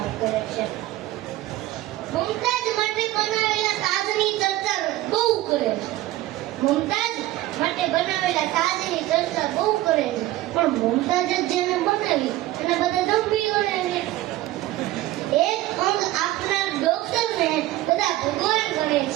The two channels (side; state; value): left; quieter; 16.0 dB